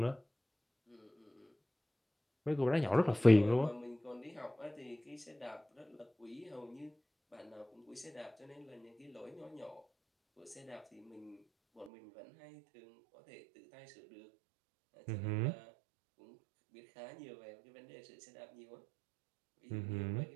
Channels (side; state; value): left; drops out; at 11.9 s